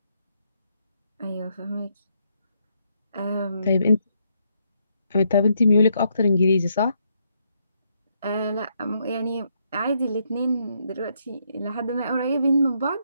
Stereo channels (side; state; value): both; inverted; correlation -0.76